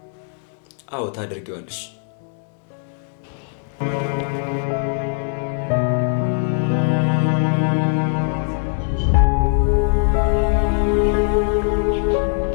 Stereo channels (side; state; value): right; silent; 59 dB below the other